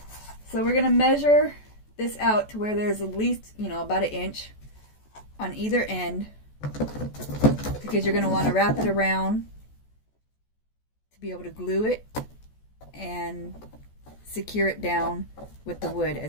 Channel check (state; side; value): late; right; 14 ms